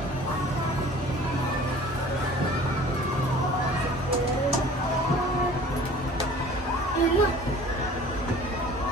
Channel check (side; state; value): both; normal; correlation 0.47